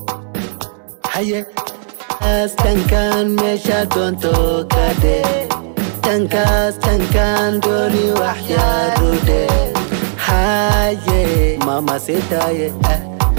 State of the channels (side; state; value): left; silent; digital silence